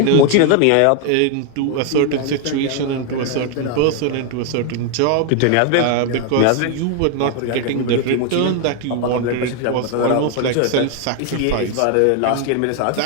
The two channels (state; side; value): different; both; correlation 0.01